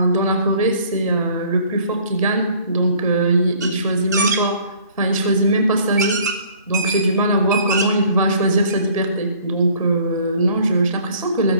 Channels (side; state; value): both; inverted; correlation -0.55